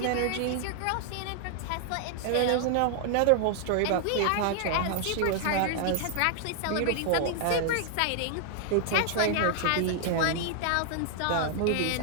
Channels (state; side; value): different; both; correlation 0.00